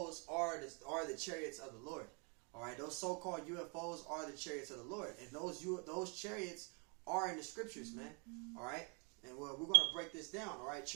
are the chariots of the Lord. Alright, those so-called UFOs are the chariots of the Lord. And those chariots are in the scriptures, man. Alright? And we're going to break this down, alright?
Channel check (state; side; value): quieter; left; 35.2 dB